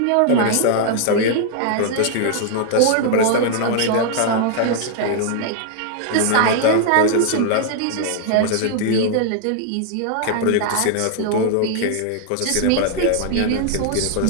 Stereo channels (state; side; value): different; both; correlation 0.00